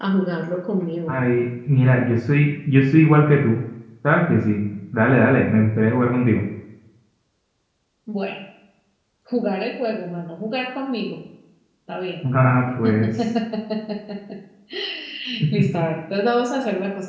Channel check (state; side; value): identical; both; correlation 1.00